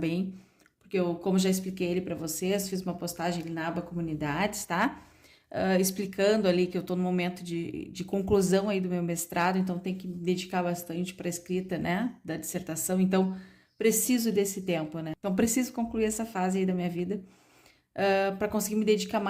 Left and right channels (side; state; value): both; identical; correlation 1.00